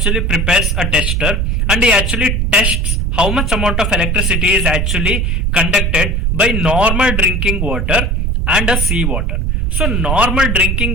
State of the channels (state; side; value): normal; both; correlation 0.38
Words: prepares a tester and he actually tests how much amount of electricity is actually conducted by normal drinking water and a sea water. So normal